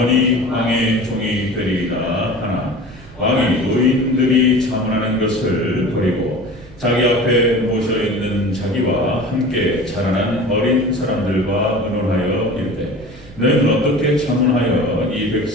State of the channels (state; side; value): noise; right; rumble, 20 dB below the sound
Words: 왕의 종이 되리이다 하나 왕이 노인들이 자문하는 것을 버리고 자기 앞에 모셔있는 자기와 함께 자라난 어린 사람들과 의논하여 이르되 너희는 어떻게 자문하여 이